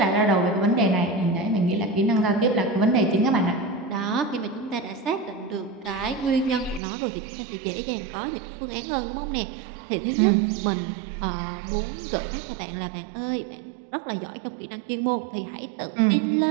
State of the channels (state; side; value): drops out; left; at 6.8 s